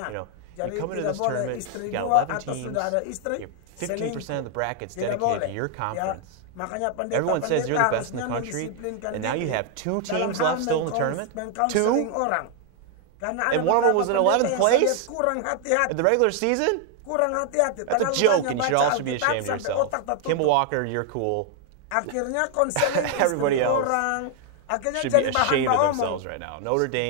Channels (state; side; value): different; both; correlation 0.00